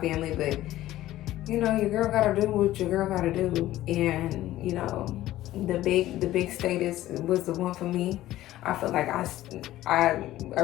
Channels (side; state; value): right; quieter; 14.9 dB